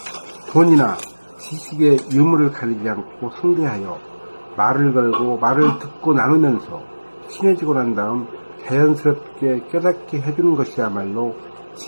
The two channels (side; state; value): both; inverted; correlation -1.00